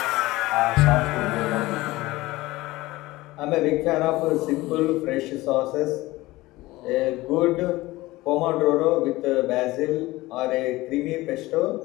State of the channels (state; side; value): quieter; right; 19.2 dB